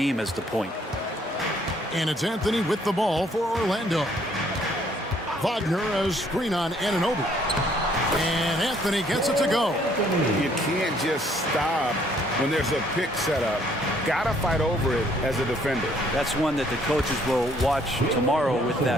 as the point. And it's Anthony with the ball for Orlando. Wagner a screen on Anunoby. And Anthony gets it to go. You can't just stop when there's a pick set up. Gotta fight over it as a defender. That's one that the coaches will watch tomorrow with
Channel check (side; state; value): both; normal; correlation 0.64